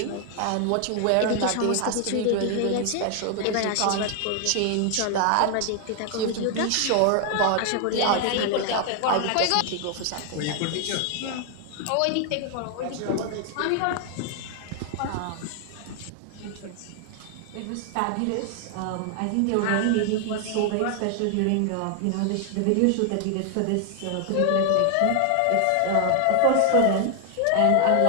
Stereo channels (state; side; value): different; both; correlation 0.00